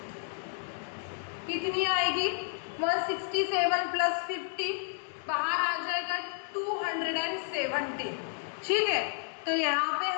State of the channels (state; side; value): silent; right; digital silence